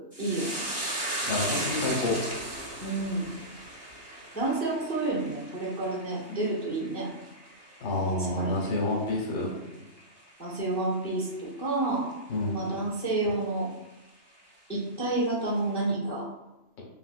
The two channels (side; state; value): right; late; 2.8 ms